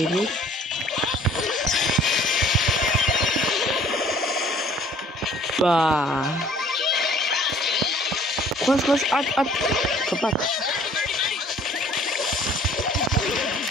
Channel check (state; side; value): normal; both; correlation 0.55